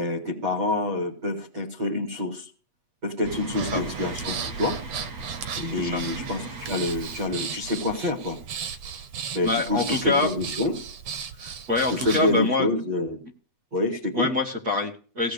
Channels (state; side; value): late; left; 8.3 ms